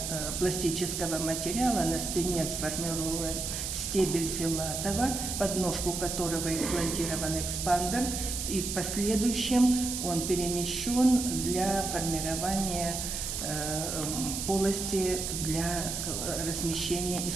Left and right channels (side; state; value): right; noise; hiss, 3 dB below the sound